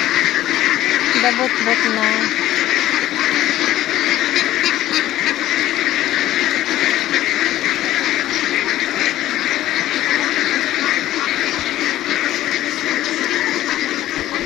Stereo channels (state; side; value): quieter; right; 14.2 dB